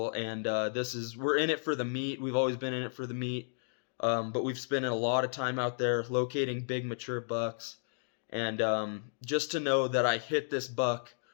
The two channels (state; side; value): silent; right; digital silence